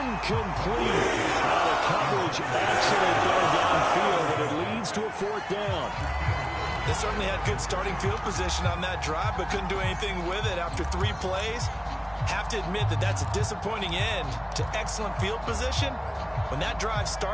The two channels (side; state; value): both; identical; correlation 1.00